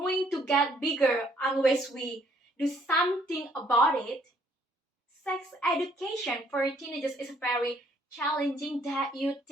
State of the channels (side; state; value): both; normal; correlation 0.65